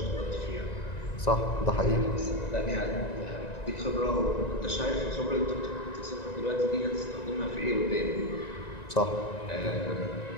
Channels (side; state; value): right; late; 1.9 ms